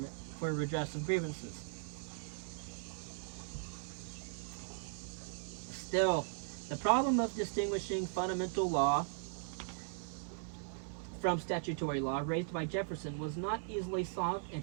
for redress of grievances. Still, the problem of distinguishing fundamental law from statutory law raised by Jefferson was not easily solved, and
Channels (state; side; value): silent; left; 52 dB below the other